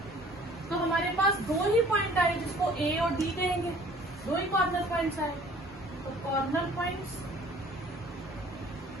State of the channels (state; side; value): normal; both; correlation 0.52